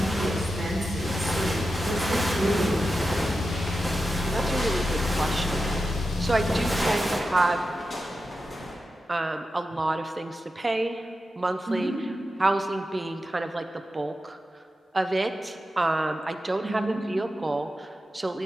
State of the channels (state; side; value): normal; both; correlation 0.91